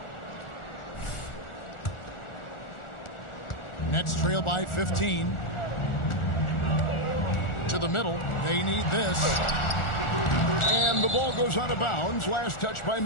Nets trail by 15. To the middle. They need this. And the ball goes out of bounds. Last touch by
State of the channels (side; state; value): right; late; 1.4 ms